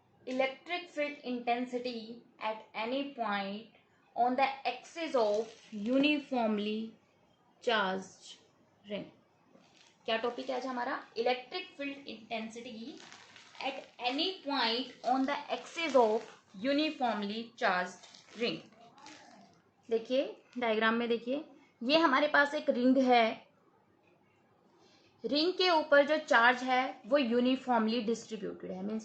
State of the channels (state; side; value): identical; both; correlation 1.00